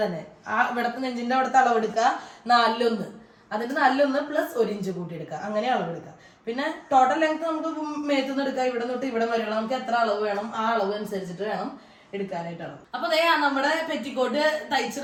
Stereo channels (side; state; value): both; identical; correlation 1.00